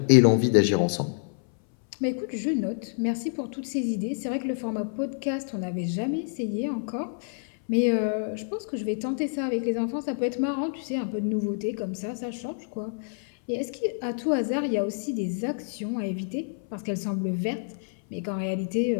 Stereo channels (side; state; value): right; silent; 58 dB below the other